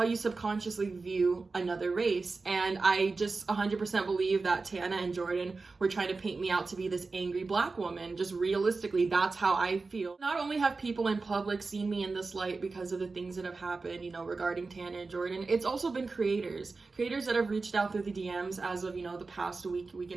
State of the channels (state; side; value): quieter; left; 4.0 dB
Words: you subconsciously view another race. And I just 100% believe that Tana and Jordan were trying to paint me out to be this angry Black woman. Just realistically, that's how I feel. Not only have people in public seen me in this light because of the things that have happened, you know, regarding Tana and Jordan, it's also been creators that have reached out through the DMs as of, you know, the past week